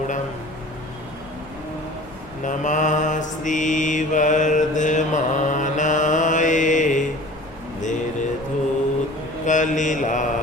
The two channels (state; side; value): noise; left; rumble, 23 dB below the sound